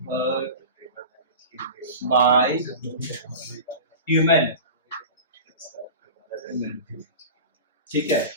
heard by human। ठीक है,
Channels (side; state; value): both; inverted; correlation -0.32